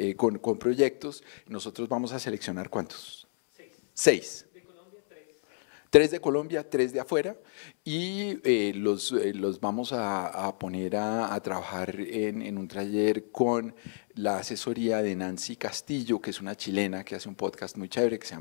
con proyectos. Nosotros vamos a seleccionar ¿cuántos? 6. De Colombia, 3. 3 de Colombia, 3 de afuera, y los vamos a poner a trabajar en un taller con la asesoría de Nancy Castillo, que es una chilena que hace un podcast muy chévere que se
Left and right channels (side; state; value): right; silent; 58 dB below the other